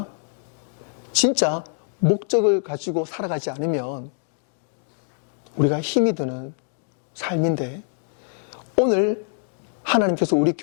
진짜 목적을 가지고 살아가지 않으면 우리가 힘이 드는 삶인데, 오늘 하나님께서 우리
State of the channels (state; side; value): silent; right; digital silence